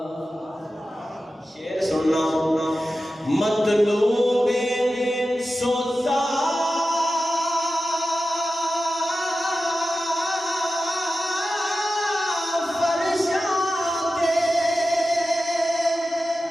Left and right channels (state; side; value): normal; both; correlation 0.93